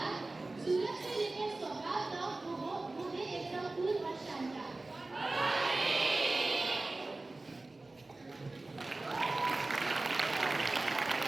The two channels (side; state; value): left; quieter; 3.1 dB